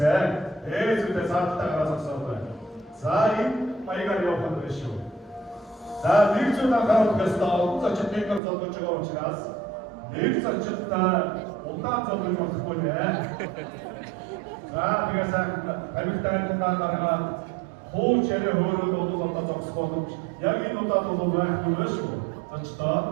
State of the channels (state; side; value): drops out; left; at 8.4 s